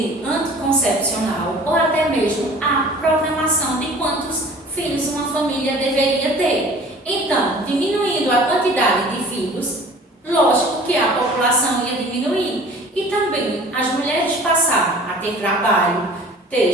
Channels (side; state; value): both; normal; correlation 0.46